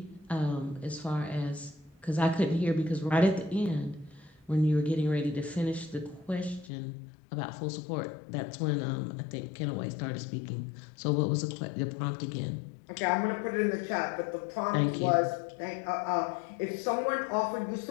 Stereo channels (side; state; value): right; drops out; at 6.7 s